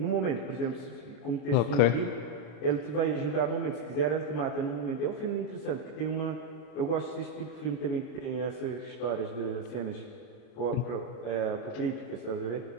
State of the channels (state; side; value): late; right; 33 ms